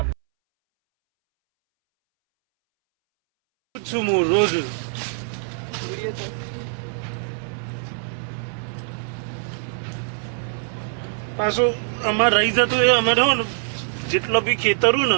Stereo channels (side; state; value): left; silent; 63 dB below the other